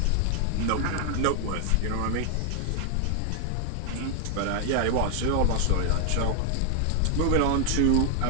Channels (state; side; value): different; both; correlation 0.00